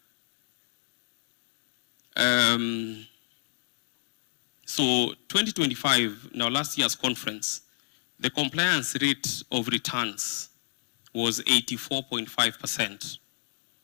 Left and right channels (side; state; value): right; silent; digital silence